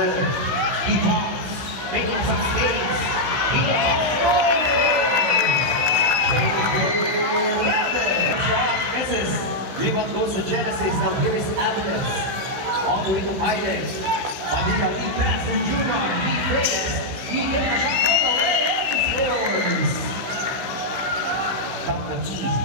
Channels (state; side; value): late; left; 16 ms